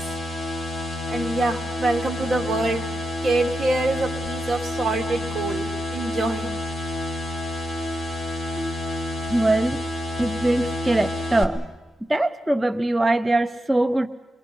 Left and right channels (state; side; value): normal; both; correlation 0.88